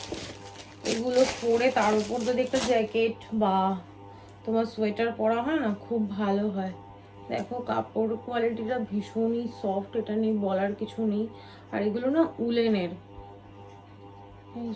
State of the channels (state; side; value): identical; both; correlation 1.00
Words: এগুলো পরে তার উপর যদি একটা জ্যাকেট বা তোমার সোয়েটার পরা হয় না, খুব ভালো হয়। দেখো কাপড় কোয়ালিটিটা ভীষণই সফট, এটা নিয়ে বলার কিছু নেই। আর এগুলো না উলেনের। এই